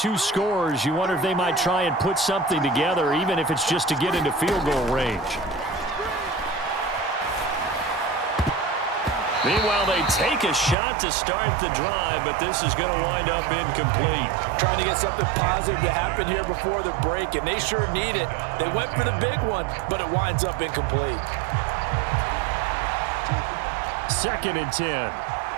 scores, you wonder if they might try and put something together, even if it's just to get into field goal range. Meanwhile, they take a shot to start the drive, but this is going to wind up incomplete. Trying to get something positive to happen here before the break, and they sure need it. They went for the big one, but it winds up incomplete. 2nd and 10.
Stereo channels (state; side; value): drops out; left; at 10.8 s